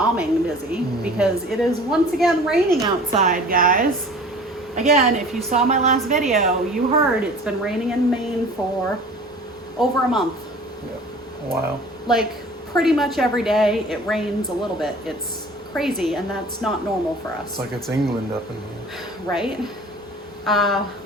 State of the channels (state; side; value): normal; both; correlation 0.44